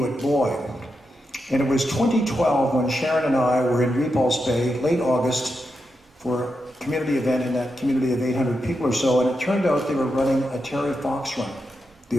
Boy. And it was 2012 when Sharon and I were in Repulse Bay, late August, for a community event in that community of 800 people or so, and it turned out they were running a Terry Fox run, the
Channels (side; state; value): both; normal; correlation 0.86